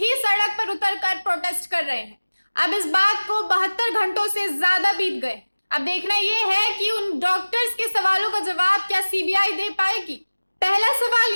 सड़क पर उतरकर प्रोटेस्ट कर रहे हैं। अब इस बात को 72 घंटों से ज्यादा बीत गए। अब देखना ये है कि उन डॉक्टर्स के सवालों का जवाब क्या सीबीआई दे पाएगी। पहला सवाल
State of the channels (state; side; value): inverted; both; correlation -1.00